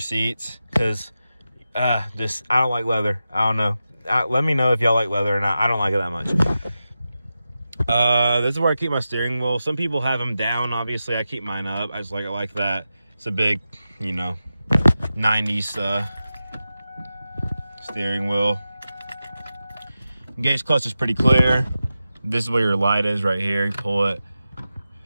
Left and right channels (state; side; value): inverted; both; correlation -0.92